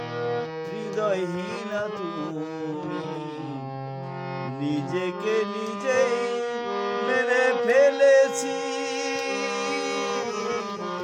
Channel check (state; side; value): identical; both; correlation 1.00